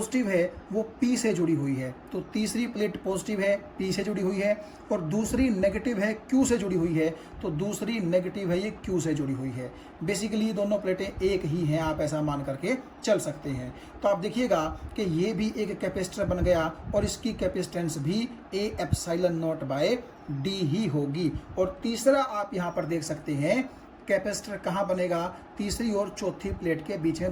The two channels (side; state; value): both; identical; correlation 1.00